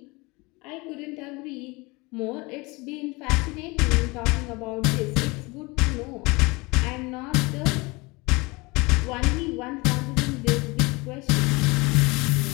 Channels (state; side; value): quieter; right; 25.1 dB